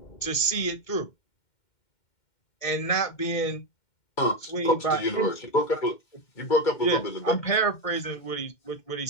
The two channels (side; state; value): right; late; 2.1 ms